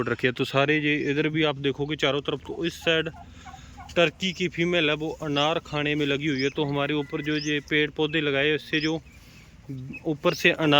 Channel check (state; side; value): identical; both; correlation 1.00